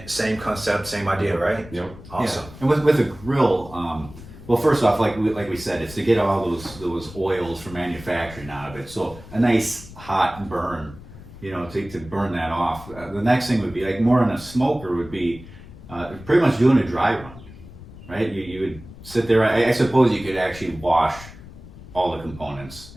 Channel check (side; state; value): left; noise; rumble, 17 dB below the sound